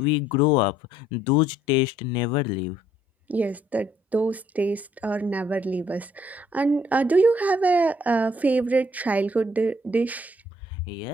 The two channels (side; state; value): both; normal; correlation 0.65